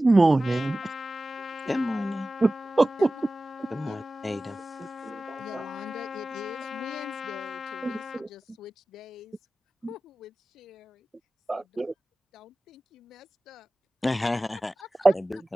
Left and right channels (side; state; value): both; normal; correlation 0.96